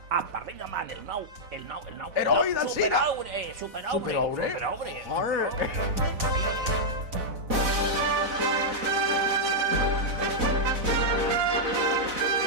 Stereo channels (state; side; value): late; left; 4.0 ms